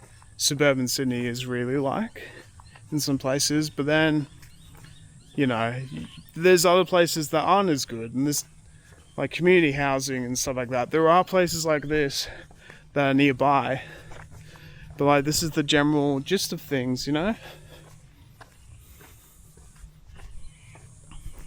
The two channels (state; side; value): identical; both; correlation 1.00